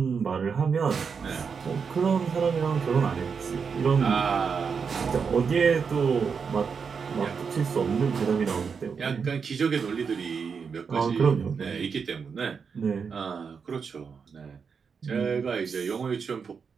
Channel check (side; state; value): left; quieter; 5.9 dB